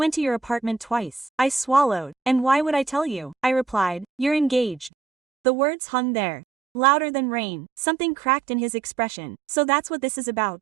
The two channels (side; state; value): left; drops out; at 4.9 s